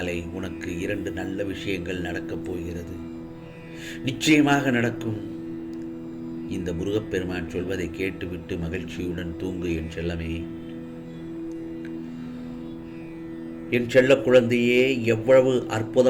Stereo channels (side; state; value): both; identical; correlation 1.00